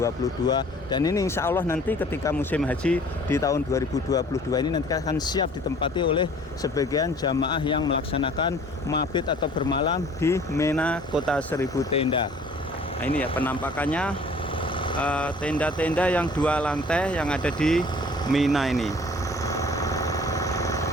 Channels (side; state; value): both; normal; correlation 0.51